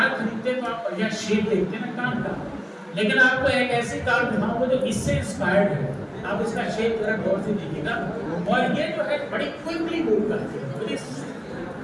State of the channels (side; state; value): both; identical; correlation 1.00